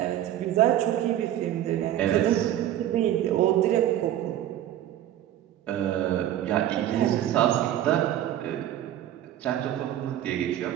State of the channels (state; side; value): quieter; left; 12.2 dB